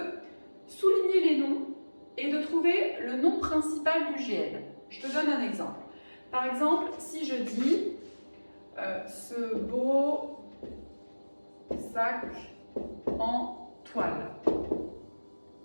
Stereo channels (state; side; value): inverted; both; correlation -1.00